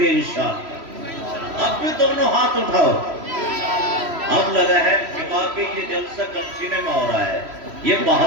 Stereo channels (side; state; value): left; late; 3.0 ms